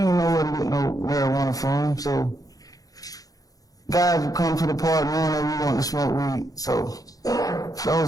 know where to get no marijuana from, so guys would come to the park knowing that we wanted to smoke weed. So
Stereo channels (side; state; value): right; late; 0.17 ms